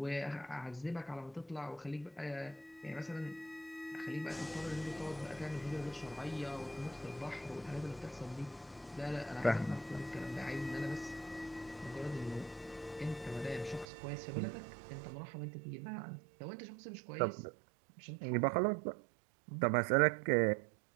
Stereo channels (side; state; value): left; drops out; at 13.9 s